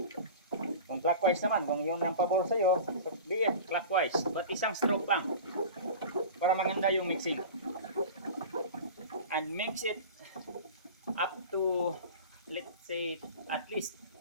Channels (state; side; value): inverted; both; correlation -0.35